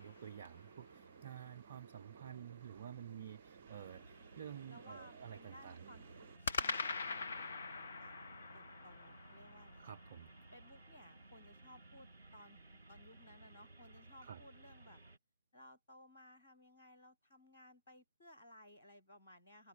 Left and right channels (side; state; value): both; inverted; correlation -0.74